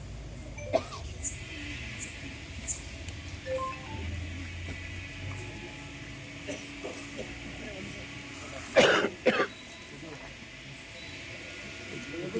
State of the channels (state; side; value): identical; both; correlation 1.00